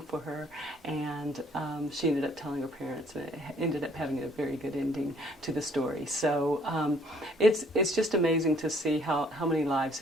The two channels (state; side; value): normal; both; correlation 0.62